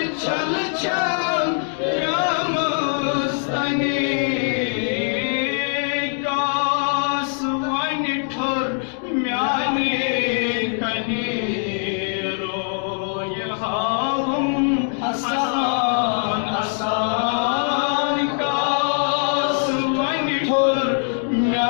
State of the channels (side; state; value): right; silent; 58 dB below the other